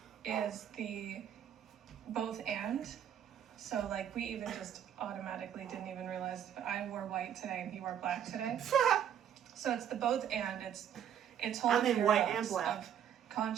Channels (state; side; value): quieter; left; 9.5 dB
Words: is the both and. So like we even just automatically didn't even realize I wore white today and he wore black today. So it's the both and. It's whole mean white and black. of